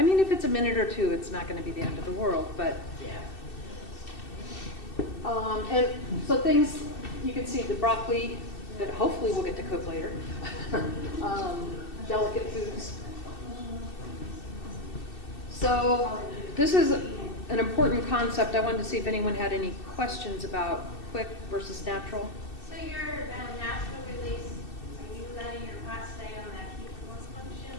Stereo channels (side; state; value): right; late; 2.7 ms